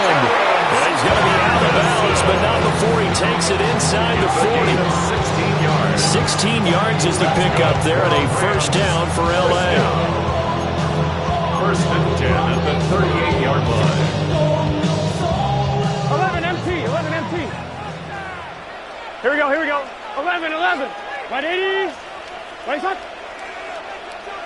Well, he's going to be out of bounds, but not before he takes it inside the 40. 16 yards. 16 yards is the pickup there, and a first down for L.A. 1st and 10 at the 38-yard line. 11 empty. Here we go. 11. Right 80. Right shot.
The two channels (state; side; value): identical; both; correlation 1.00